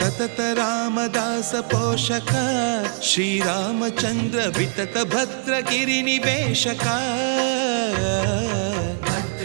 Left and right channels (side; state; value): left; silent; 64 dB below the other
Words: रामदास पोषक श्रीरामचंद्र वितत भद्रगिरि निवेशक